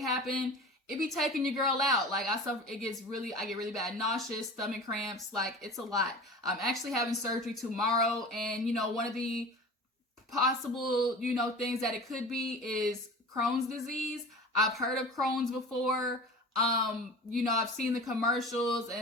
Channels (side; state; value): both; normal; correlation 0.36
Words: it be taking your girl out. Like I get really bad nauseous, stomach cramps, like it's a lot. I'm actually having surgery tomorrow, and one of the possible, things that it could be is Crohn's disease. I've heard of Crohn's before. I've seen the commercials,